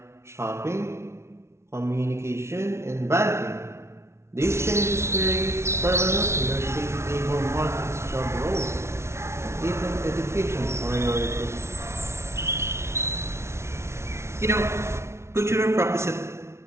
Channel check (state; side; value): late; left; 0.13 ms